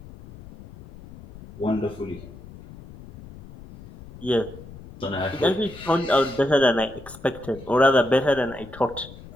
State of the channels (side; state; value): left; noise; rumble, 18 dB below the sound